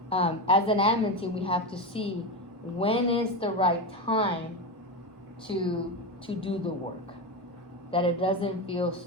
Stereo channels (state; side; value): normal; both; correlation 0.16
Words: of, as an admin team, we have to see when is the right time to do the work, that it doesn't feel